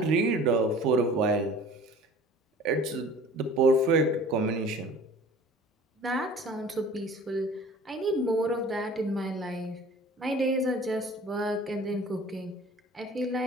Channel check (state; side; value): normal; both; correlation 0.46